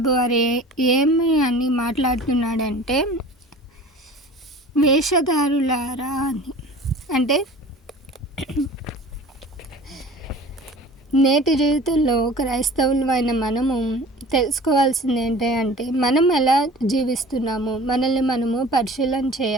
వారు ఏమి అని మాట్లాడుతున్నాడంటే, వేషధారులారా అని. అంటే నేటి జీవితంలో క్రైస్తవులమైన మనము తెలుసుకోవాల్సింది ఏంటంటే, మనం ఎలా జీవిస్తున్నాము, మనల్ని మనము పరిశీలన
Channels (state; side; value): normal; both; correlation 0.42